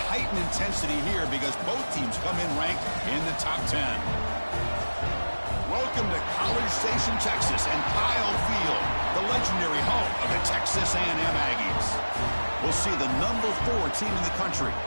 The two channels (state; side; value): inverted; both; correlation -1.00